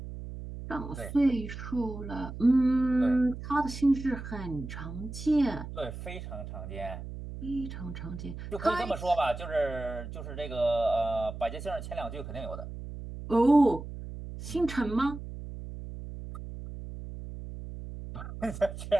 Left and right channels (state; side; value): noise; right; hum, 10 dB below the sound